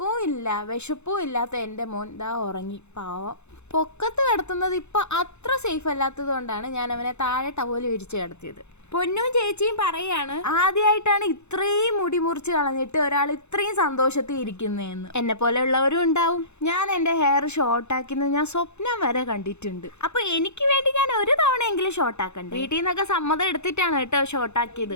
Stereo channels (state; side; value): late; right; 0.82 ms